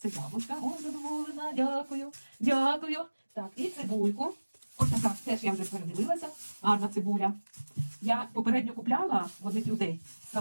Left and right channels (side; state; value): both; inverted; correlation -1.00